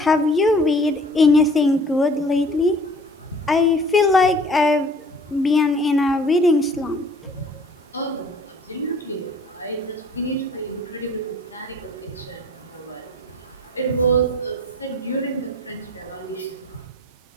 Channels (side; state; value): both; normal; correlation 0.50